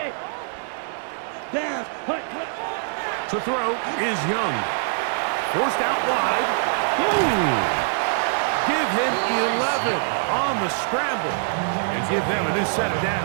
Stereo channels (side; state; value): left; silent; digital silence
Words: Down. Hut. To throw is Young. Forced out wide. Ooh. Give him 11 on the scramble. And give them a new set of